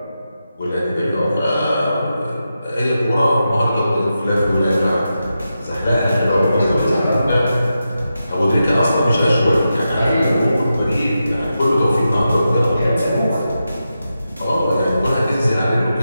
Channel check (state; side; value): inverted; both; correlation -0.89